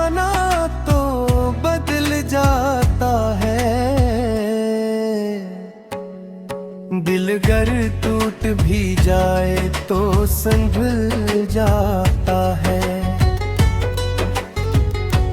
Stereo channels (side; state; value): both; identical; correlation 1.00